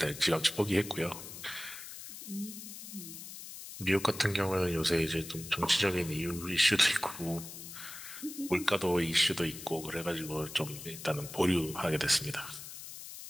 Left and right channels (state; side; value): noise; left; hiss, 11 dB below the sound